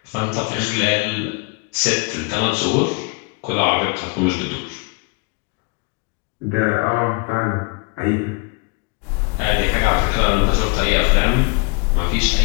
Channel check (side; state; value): right; quieter; 31.4 dB